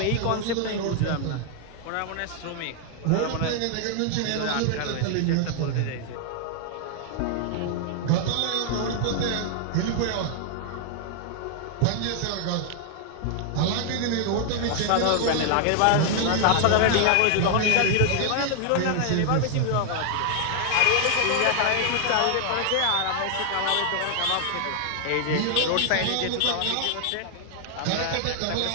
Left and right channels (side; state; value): both; different; correlation 0.00